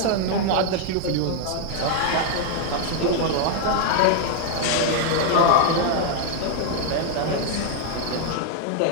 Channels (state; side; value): different; both; correlation 0.00